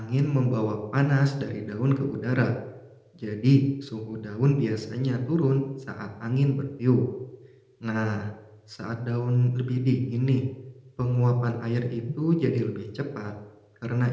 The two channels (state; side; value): identical; both; correlation 1.00